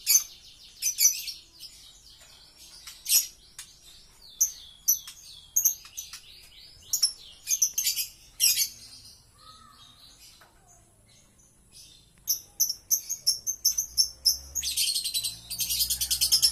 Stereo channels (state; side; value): identical; both; correlation 1.00